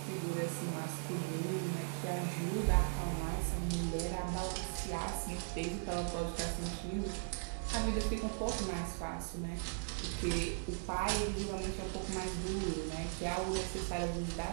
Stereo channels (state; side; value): silent; left; 52 dB below the other